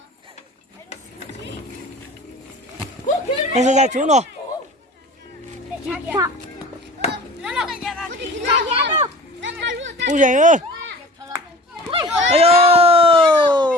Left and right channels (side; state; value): both; normal; correlation 0.41